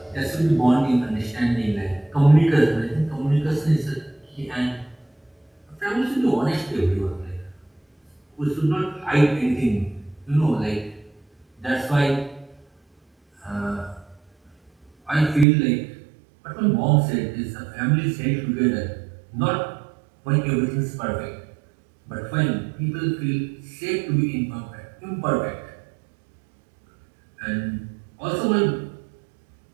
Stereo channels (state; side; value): drops out; left; at 15.5 s